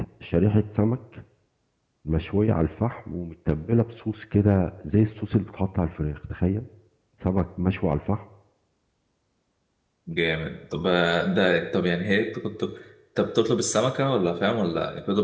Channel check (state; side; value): identical; both; correlation 1.00